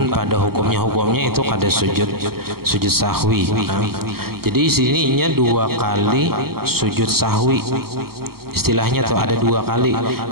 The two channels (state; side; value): late; left; 0.94 ms